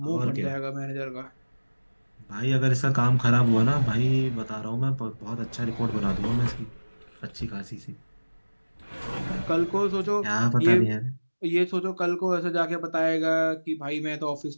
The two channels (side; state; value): both; inverted; correlation -1.00